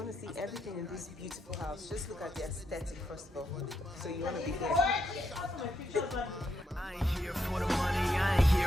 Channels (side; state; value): both; normal; correlation 0.80